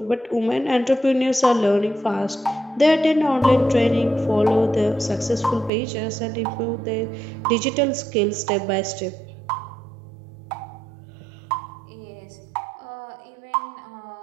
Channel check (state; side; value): drops out; left; at 5.7 s